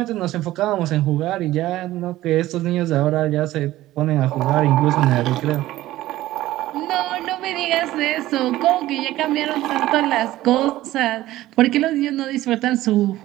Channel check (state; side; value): quieter; left; 15.7 dB